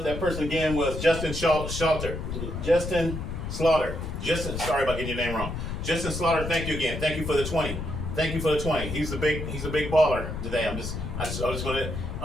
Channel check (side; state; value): left; noise; rumble, 5 dB below the sound